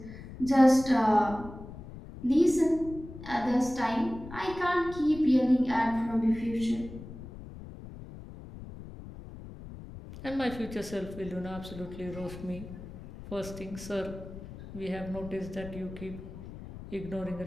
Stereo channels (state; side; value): noise; left; rumble, 13 dB below the sound